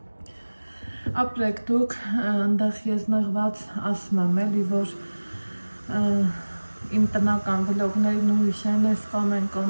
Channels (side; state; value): both; inverted; correlation -1.00